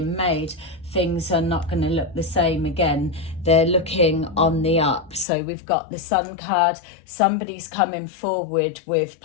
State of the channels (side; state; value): right; drops out; at 5.2 s